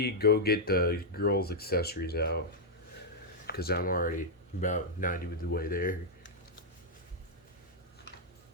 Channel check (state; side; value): normal; both; correlation -0.05